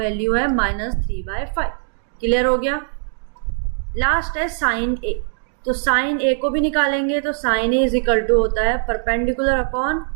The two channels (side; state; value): left; silent; digital silence